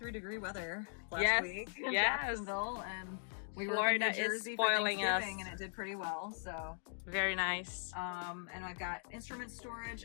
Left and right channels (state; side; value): silent; right; digital silence